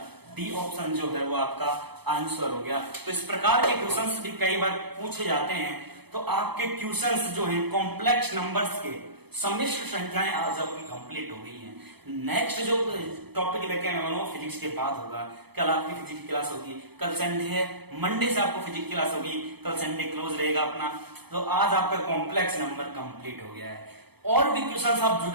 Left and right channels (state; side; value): late; left; 0.98 ms